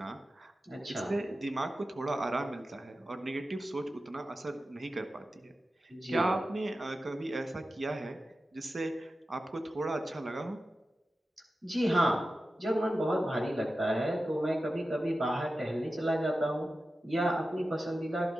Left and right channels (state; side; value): normal; both; correlation 0.93